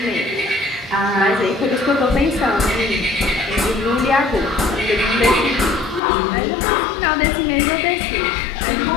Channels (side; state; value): right; drops out; at 6.0 s